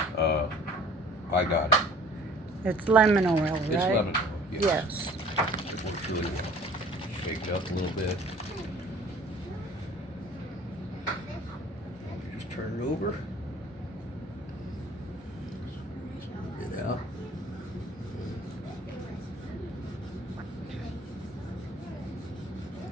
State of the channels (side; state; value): both; normal; correlation 0.51